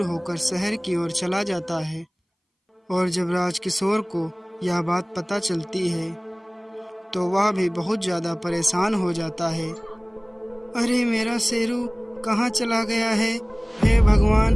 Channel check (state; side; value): identical; both; correlation 1.00